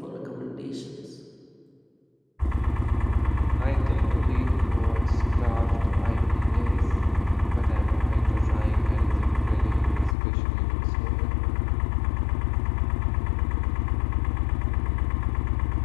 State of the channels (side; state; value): right; drops out; at 10.2 s